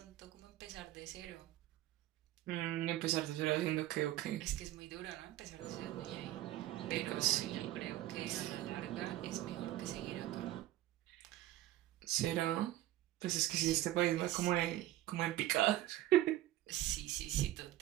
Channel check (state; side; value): quieter; left; 14.7 dB